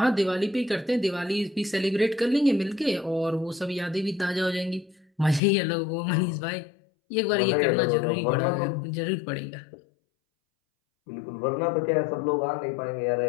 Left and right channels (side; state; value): right; drops out; at 5.4 s